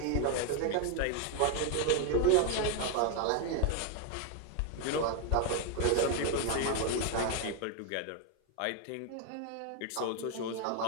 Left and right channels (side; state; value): both; different; correlation 0.01